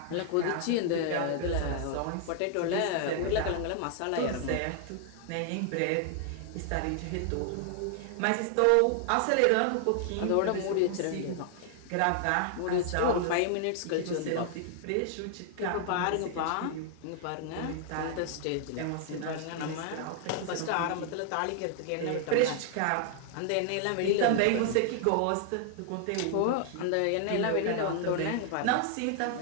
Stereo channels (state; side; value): different; both; correlation 0.00